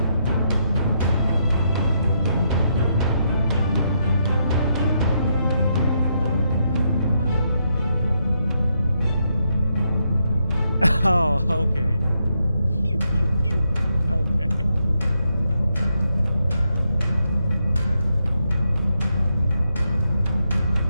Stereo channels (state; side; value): inverted; both; correlation -0.80